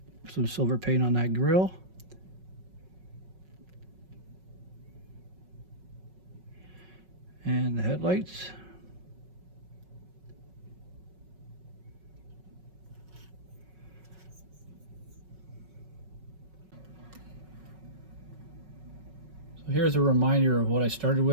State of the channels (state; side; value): late; left; 5.4 ms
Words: put some silver paint on that grille. And the headlights. So here's a reminder of what I started